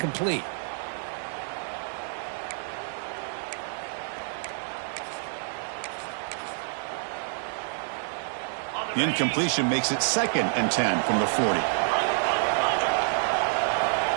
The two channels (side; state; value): left; silent; digital silence